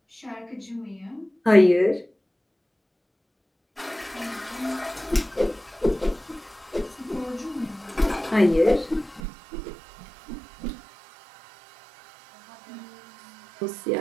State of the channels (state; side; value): drops out; left; at 9.2 s